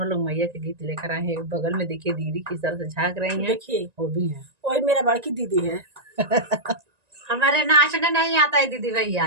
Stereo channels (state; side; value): late; left; 1.9 ms